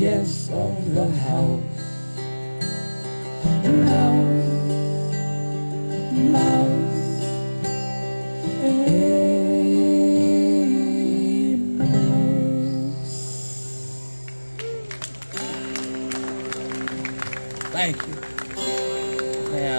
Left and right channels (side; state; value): both; inverted; correlation -1.00